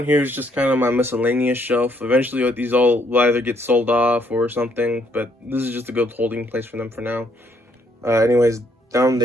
here is just kind of my miscellaneous shelf. Eventually these all will either get sold off or something, but this is just a good holding place for them for now. Anyways, down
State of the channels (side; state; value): both; normal; correlation 0.70